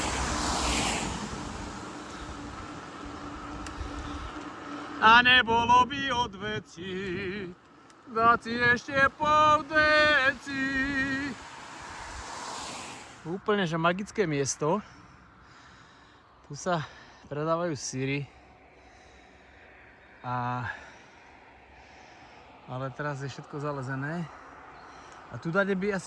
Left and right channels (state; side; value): identical; both; correlation 1.00